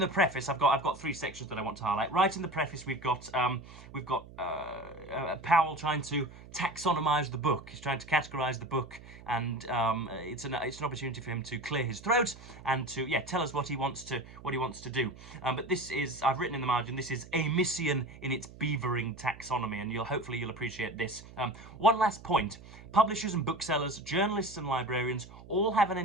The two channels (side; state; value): right; noise; hum, 18 dB below the sound